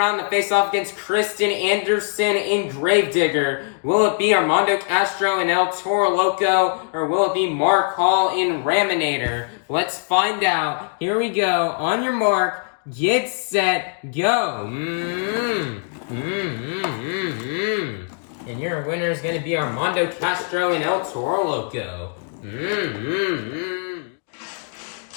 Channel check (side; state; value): right; silent; 64 dB below the other